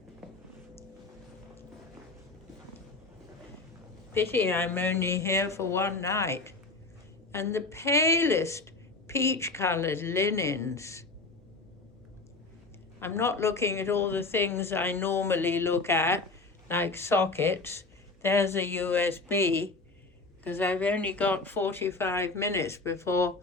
Pity I'm only here for one night. And the palest peach-colored linens. I'm not looking at all the things I normally look at, like sockets. There's a USB, because I've only got 45 minutes before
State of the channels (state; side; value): quieter; right; 3.4 dB